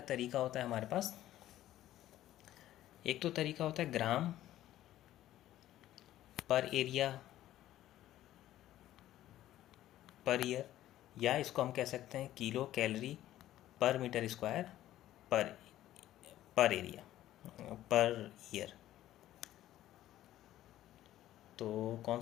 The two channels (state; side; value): quieter; right; 13.6 dB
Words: तरीका होता है हमारे पास, एक तो तरीका होता है ग्राम पर एरिया पर ईयर, या इसको हम कह सकते हैं किलो कैलोरी पर मीटर स्क्वायर पर एरिया पर ईयर। तो कौन